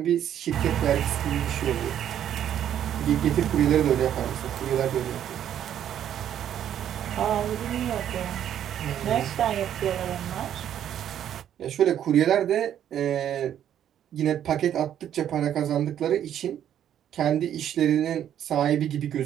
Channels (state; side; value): quieter; left; 10.2 dB